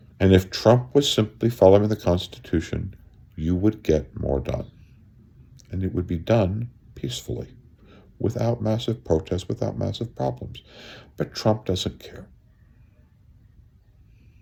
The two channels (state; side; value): identical; both; correlation 1.00